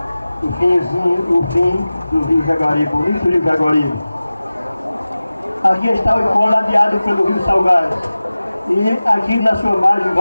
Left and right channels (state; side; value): inverted; both; correlation -0.97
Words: o fim do Rio Jaguaribe, o início do Rio Jaguaribe. Aqui está o Icó ladeado pelo Rio Salgado. E aqui na sua margem